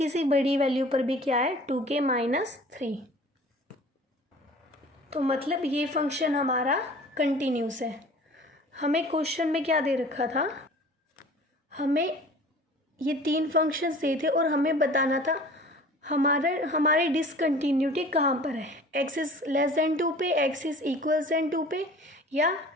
सी बड़ी वैल्यू पर भी क्या है, 2k माइनस 3। तो मतलब ये फंक्शन हमारा कंटिन्यूस है। हमें क्वेश्चन में क्या दे रखा था, हमें ये 3 फंक्शंस दिए थे और हमें बताना था हमारी डिसकंटिन्यूटी कहाँ पर है, x इज़ लेस देन 2 पे, x इज़ इक्वल देन 2 पे, या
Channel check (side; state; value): both; normal; correlation 0.45